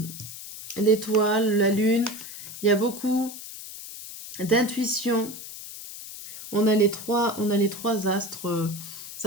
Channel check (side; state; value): left; noise; hiss, 12 dB below the sound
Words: l'étoile, la lune, il y a beaucoup d'intuition. On a les trois astres.